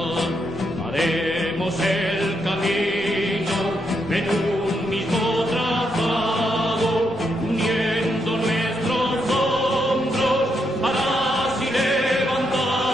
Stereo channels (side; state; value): both; normal; correlation 0.80